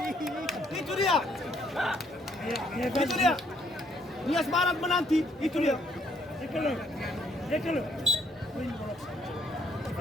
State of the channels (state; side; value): normal; both; correlation 0.68